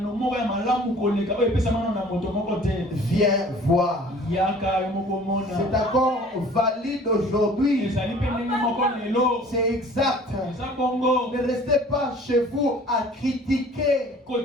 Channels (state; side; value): normal; both; correlation 0.49